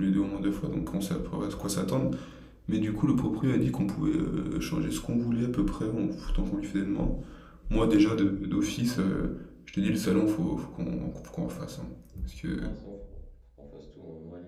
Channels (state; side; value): identical; both; correlation 1.00